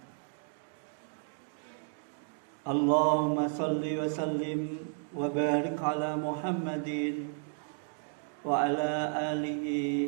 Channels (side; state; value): left; silent; 56 dB below the other